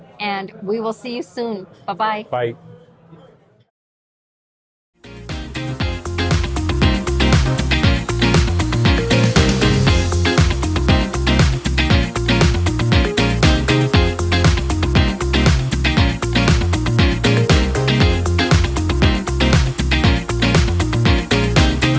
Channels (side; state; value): both; identical; correlation 1.00